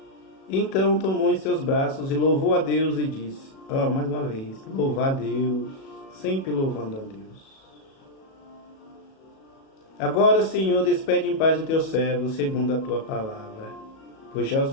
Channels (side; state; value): right; late; 37 ms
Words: Então tomou em seus braços e louvou a Deus e disse, mais uma vez, louvar a Deus, sempre louvando a Deus. Agora, Senhor, despede em paz o teu servo, segundo a tua palavra, pois já os